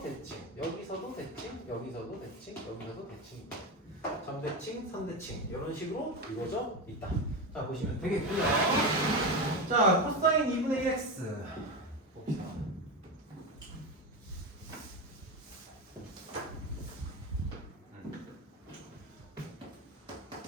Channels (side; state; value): both; normal; correlation 0.18